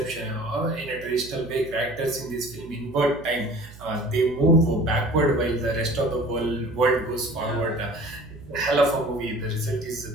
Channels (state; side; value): noise; right; hum, 19 dB below the sound